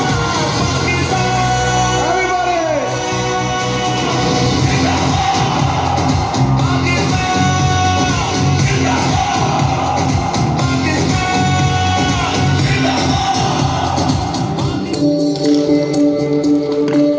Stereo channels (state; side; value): identical; both; correlation 1.00